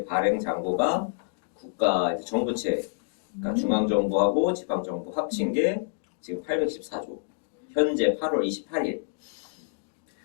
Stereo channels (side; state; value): right; silent; digital silence